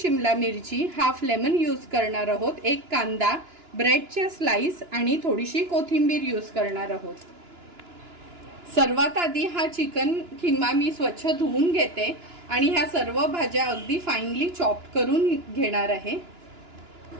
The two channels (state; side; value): late; left; 2.9 ms